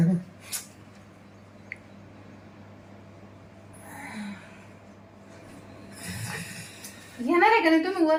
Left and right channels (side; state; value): both; identical; correlation 1.00